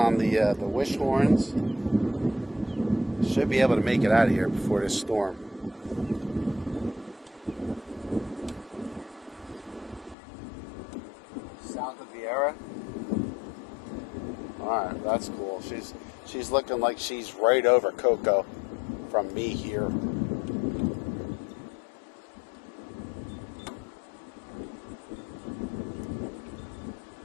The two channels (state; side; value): drops out; right; at 10.2 s